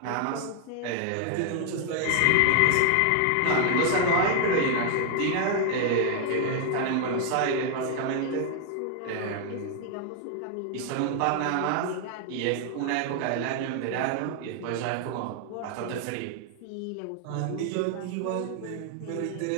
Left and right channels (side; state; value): both; different; correlation 0.00